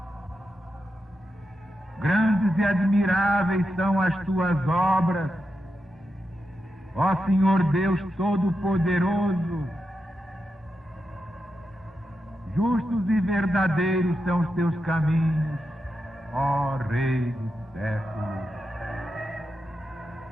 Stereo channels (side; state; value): both; normal; correlation 0.87